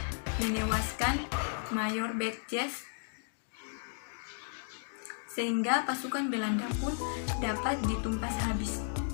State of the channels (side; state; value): right; silent; digital silence